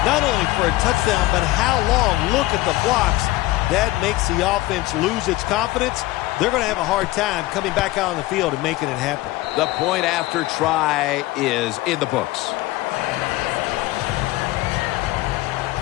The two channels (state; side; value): quieter; right; 18.4 dB